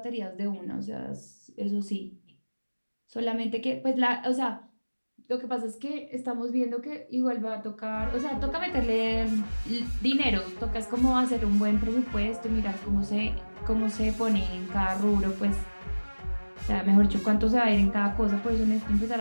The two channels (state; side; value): inverted; both; correlation -1.00